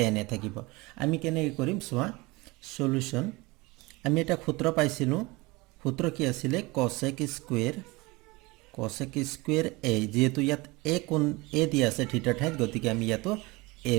এ থাকিব। আমি কেনেকৈ কৰিম চোৱা, সলিউশন। আমি এটা সূত্ৰ পাইছিলোঁ। সূত্ৰ কি আছিলে, কসেক স্কুৱেৰ এ, যেহেতু ইয়াত এ কোণ এ দিয়া আছে থিটাৰ ঠাইত, গতিকে আমি ইয়াতো এ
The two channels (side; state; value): left; quieter; 23.5 dB